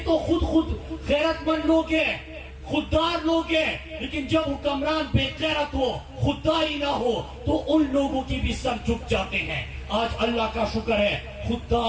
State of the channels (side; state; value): both; identical; correlation 1.00